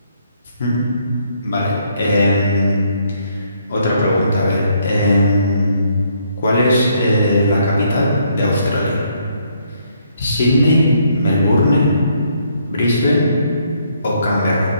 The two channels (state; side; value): inverted; both; correlation -0.70